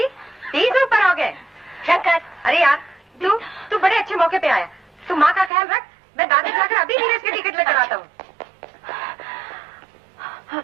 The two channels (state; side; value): drops out; left; at 5.5 s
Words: 30 ऊपर हो गए। शंकर, अरे यार तू बड़े अच्छे मौके पे आया। तू माँ का ख्याल रख, मैं दादा जाकर अभी नीरज की टिकट लेकर आता हूँ।